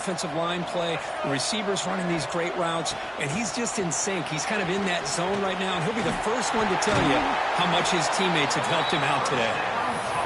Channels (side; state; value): both; identical; correlation 1.00